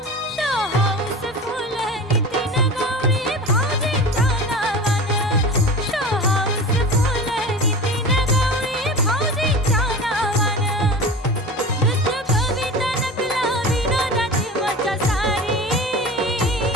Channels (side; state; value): both; normal; correlation 0.33